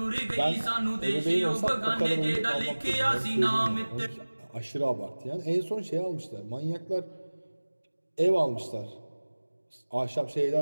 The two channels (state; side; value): inverted; both; correlation -1.00